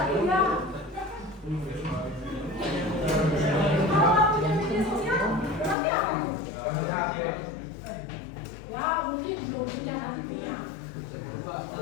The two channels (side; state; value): right; drops out; at 5.8 s